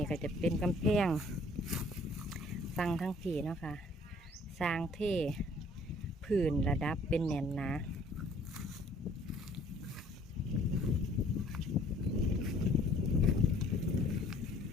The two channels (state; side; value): normal; both; correlation 0.57